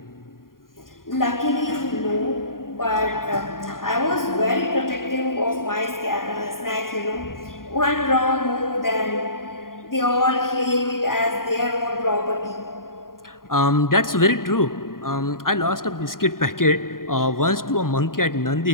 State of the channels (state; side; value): late; right; 0.91 ms